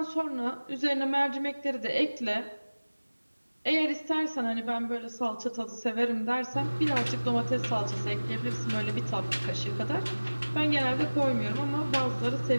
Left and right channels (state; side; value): inverted; both; correlation -1.00